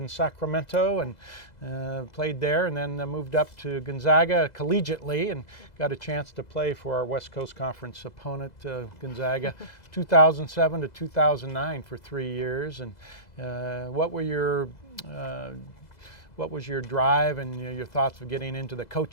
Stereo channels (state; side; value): late; right; 2.0 ms